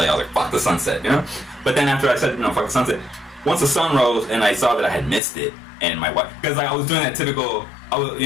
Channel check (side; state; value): right; drops out; at 5.2 s